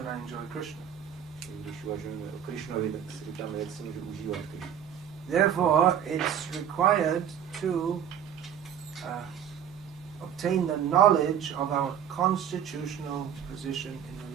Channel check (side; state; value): left; quieter; 9.1 dB